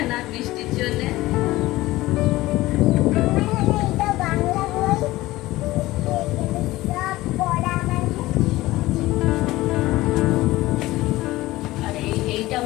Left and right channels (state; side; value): quieter; right; 18.0 dB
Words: না বৃষ্টির জন্য। আর এইটা